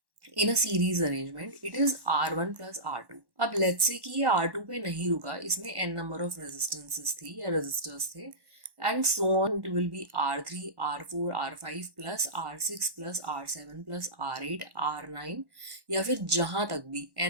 in a series arrangement it is R1 plus R2। अब लेट्स से कि ये R2 पे नहीं रुका, इसमें n नंबर ऑफ रेजिस्टेंसेस थी या रेजिस्टर्स थे, and so on it will be R3 R4 R5 plus R6 plus R7 plus R8 R9, या फिर जहाँ तक भी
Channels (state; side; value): late; left; 1.1 ms